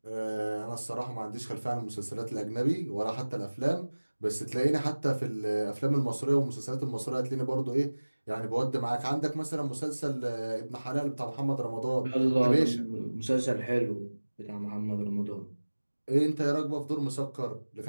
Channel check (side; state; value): both; inverted; correlation -1.00